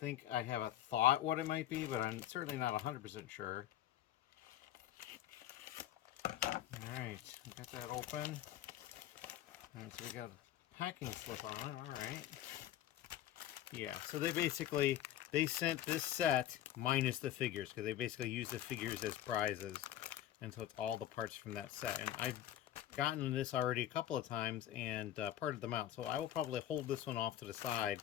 I have a thought what it might be, but I'm certainly not 100% sure. Alright, we got that open. So we got a packing slip on it. Alright. Yeah, so they sent this set minus the figures, because they basically use the figures as prizes. And so it's all the parts from that set. And I've gotten this already a couple of times and parted them out. So I will probably hold this one off to the side,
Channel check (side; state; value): right; quieter; 12.3 dB